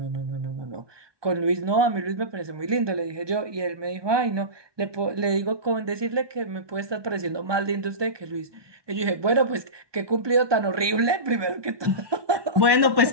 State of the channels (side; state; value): left; late; 1.2 ms